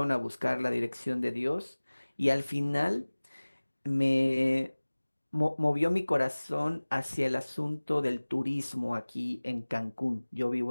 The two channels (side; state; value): both; inverted; correlation -1.00